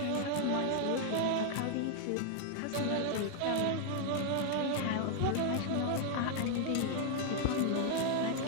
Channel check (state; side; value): different; both; correlation 0.00